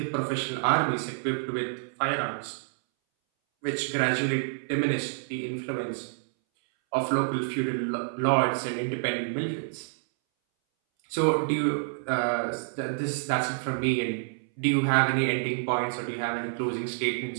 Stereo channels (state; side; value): silent; left; 59 dB below the other